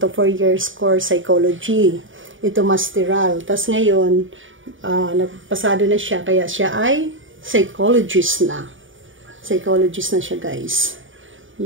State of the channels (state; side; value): late; left; 0.57 ms